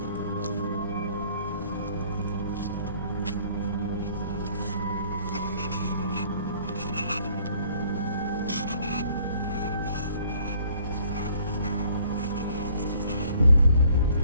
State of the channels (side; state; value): both; inverted; correlation -0.59